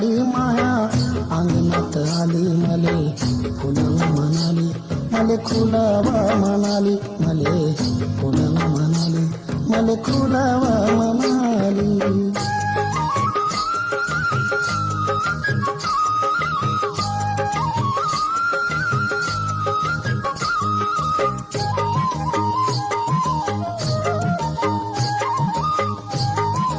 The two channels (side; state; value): both; identical; correlation 1.00